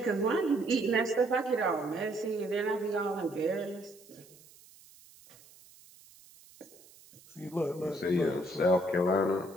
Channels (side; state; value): right; noise; hiss, 24 dB below the sound